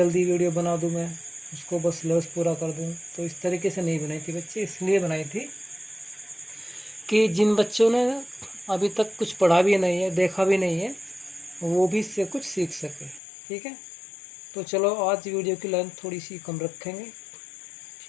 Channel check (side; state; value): right; drops out; at 13.2 s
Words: वीडियो बना दूँ, मैं उसको बस सिलेबस पूरा कर दूँ। तो इस तरीके से नहीं बनाई थी बच्चे, इसलिए बनाई थी कि जिन बच्चों ने अभी तक कुछ पढ़ा भी नहीं है, देखा भी नहीं है, वो भी इससे कुछ सीख सके, ठीक है। तो चलो आज वीडियो की लेंथ थोड़ी सी कम रखेंगे,